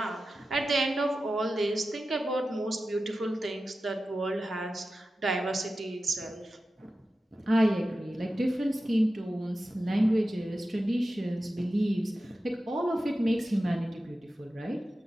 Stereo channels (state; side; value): normal; both; correlation 0.93